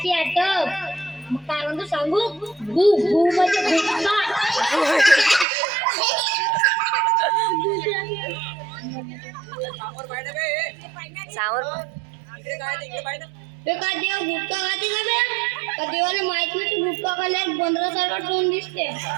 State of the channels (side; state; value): left; drops out; at 5.5 s